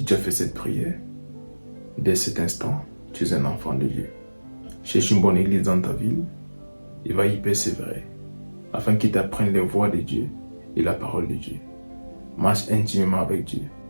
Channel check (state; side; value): inverted; both; correlation -1.00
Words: tu as fait cette prière, dès cet instant, tu es un enfant de Dieu. Cherche une bonne église dans ta ville et va y persévérer afin qu'il t'apprenne les voies de Dieu et la parole de Dieu. Marche intimement avec Dieu.